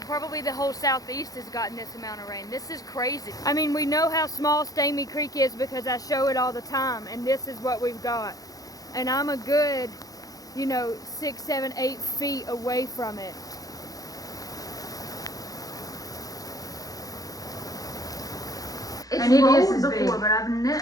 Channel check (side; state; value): right; late; 0.17 ms